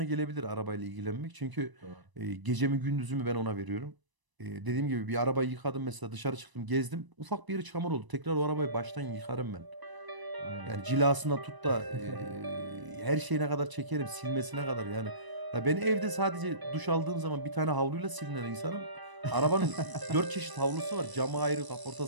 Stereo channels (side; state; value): left; late; 1.0 ms